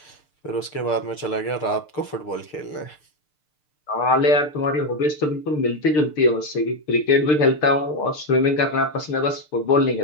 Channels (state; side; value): late; right; 6.7 ms